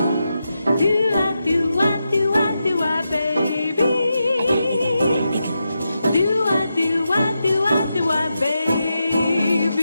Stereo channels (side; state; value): both; inverted; correlation -0.88